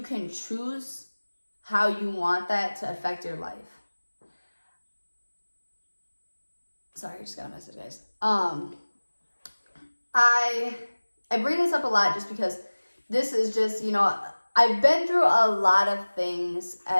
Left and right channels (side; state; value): both; inverted; correlation -1.00